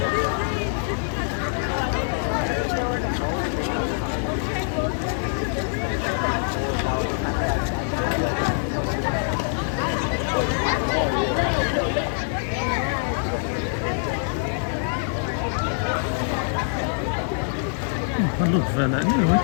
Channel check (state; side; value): silent; right; digital silence